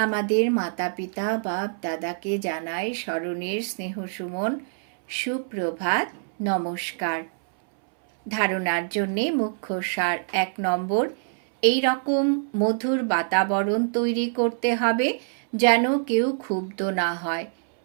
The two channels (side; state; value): left; silent; 62 dB below the other